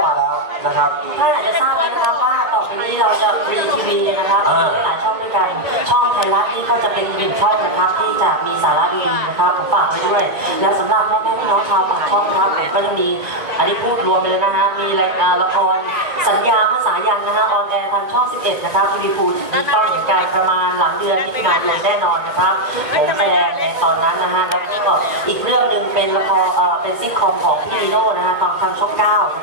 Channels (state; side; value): late; left; 1.9 ms